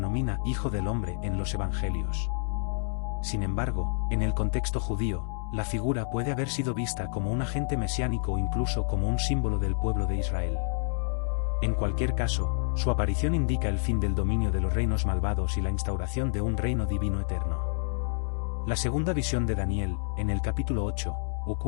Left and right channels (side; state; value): right; silent; 59 dB below the other